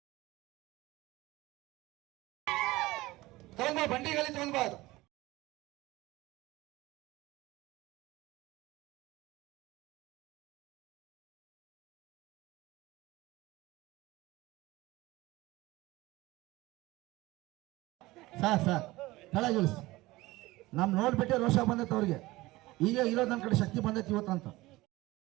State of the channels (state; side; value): quieter; left; 19.4 dB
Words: ಬಂಡಿಗಳಲ್ಲಿ ತಗೊಂಡ್ಬಾರ್ದು. ಸಾಕ್ ಕೆಳಗಿಳಿಸಿ. ನಮ್ ನೋಡ್ಬಿಟ್ಟೆ ರೋಷ ಬಂದೈತೆ ಅವ್ರಿಗೆ. ಈಗ ಇರೋದು ನನ್ನ ಕಡೆ ಶಕ್ತಿ ಬಂದೈತಿ ಇವತ್ತಂತ.